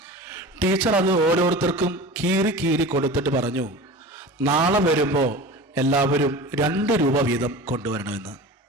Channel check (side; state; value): both; normal; correlation 0.35